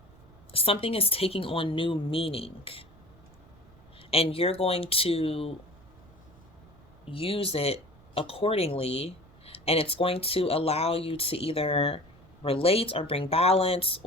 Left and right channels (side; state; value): right; noise; rumble, 25 dB below the sound